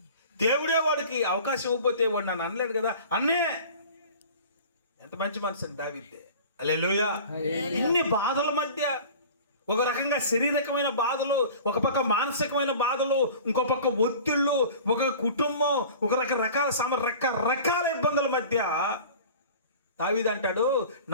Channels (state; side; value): inverted; both; correlation -0.41